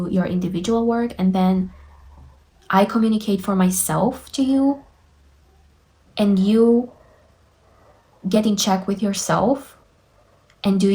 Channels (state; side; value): identical; both; correlation 1.00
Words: your individual work, and then I communicate for myself to you, and you get in check with yourself and do